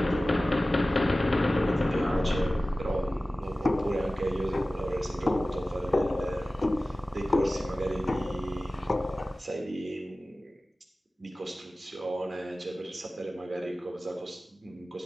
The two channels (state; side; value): normal; both; correlation 0.96